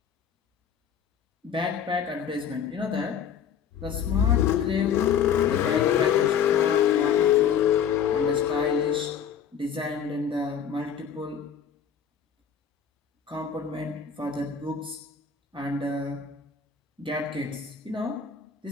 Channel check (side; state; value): right; quieter; 7.8 dB